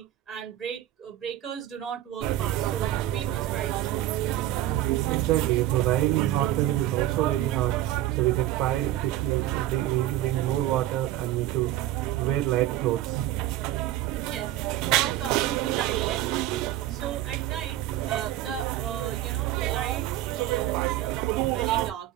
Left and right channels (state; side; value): quieter; left; 14.0 dB